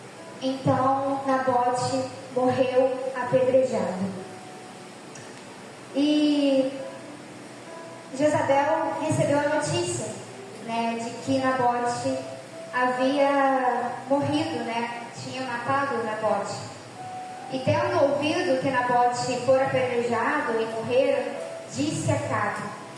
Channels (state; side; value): identical; both; correlation 1.00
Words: Então Nabote morreu apedrejado. E Jezabel recebeu a notícia, de que Nabote havia morrido, tinha matado Nabote. E tendo ouvido que Nabote fora apedrejado e morreu, disse a Acabe,